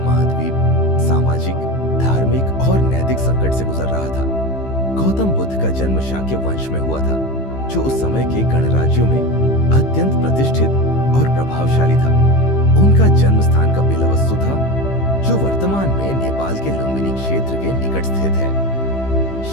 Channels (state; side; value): late; right; 15 ms